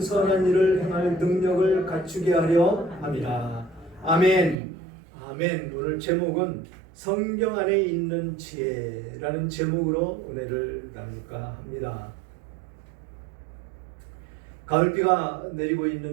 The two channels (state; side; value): drops out; left; at 4.5 s